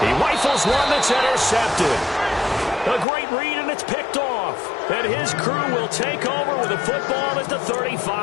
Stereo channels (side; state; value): right; drops out; at 3.1 s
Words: rifles one that's intercepted. A great read, and it's picked off. And his crew will take over with the football at the